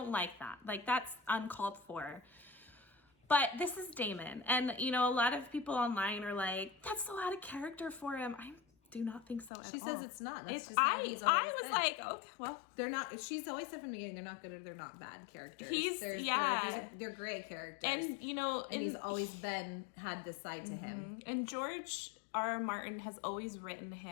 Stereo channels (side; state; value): right; drops out; at 9.5 s